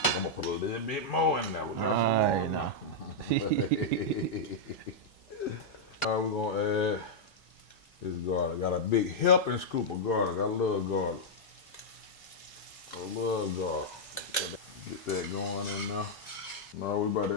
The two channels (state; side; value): normal; both; correlation -0.06